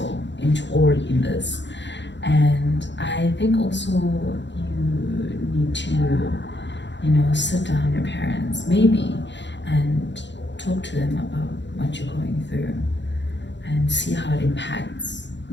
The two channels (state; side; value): late; right; 0.52 ms